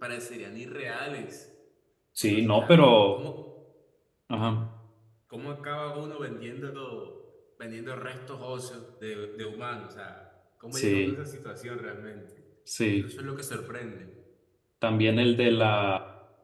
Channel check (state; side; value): identical; both; correlation 1.00